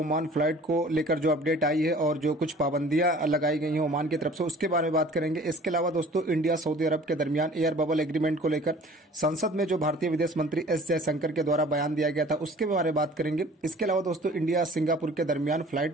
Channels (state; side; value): normal; both; correlation 0.48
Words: फ्लाइट को लेकर जो अपडेट आई है और जो कुछ पाबंदियां लगाई गई हैं ओमान की तरफ से, उसके बारे में बात करेंगे। इसके अलावा दोस्तों इंडिया सऊदी अरब के दरमियान एयर बबल एग्रीमेंट को लेकर संसद में जो भारतीय विदेश मंत्री एस जयशंकर के द्वारा बयान दिया गया था उसके बारे में बात करेंगे। इसके अलावा दोस्तों इंडिया सिंगापुर के दरमियान